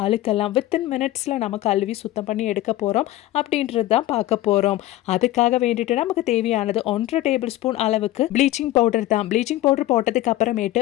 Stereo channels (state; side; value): quieter; right; 15.5 dB